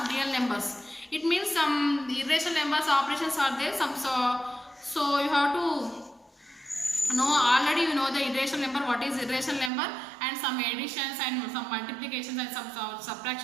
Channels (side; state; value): left; drops out; at 9.7 s